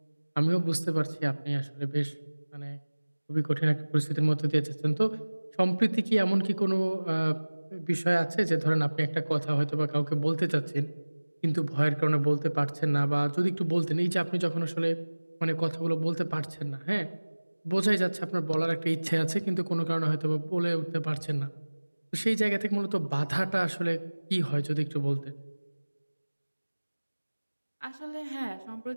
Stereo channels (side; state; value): both; inverted; correlation -1.00